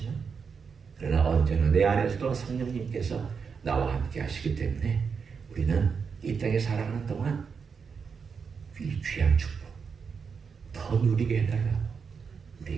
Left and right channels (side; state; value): left; quieter; 5.9 dB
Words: 그러나 언제나 내 안에서도 성령님께서 나와 함께 하시기 때문에 우리는 이 땅에 살아가는 동안 이 귀한 축복, 더 누리게 해달라. 우리